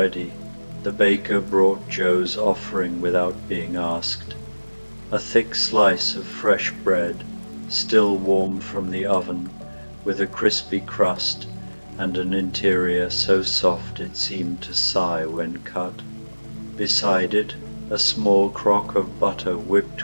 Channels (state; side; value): inverted; both; correlation -1.00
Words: The baker brought Joe's offering without being asked. A thick slice of fresh bread, still warm from the oven, with a crispy crust and an interior so soft it seemed to sigh when cut. Beside it, a small crock of butter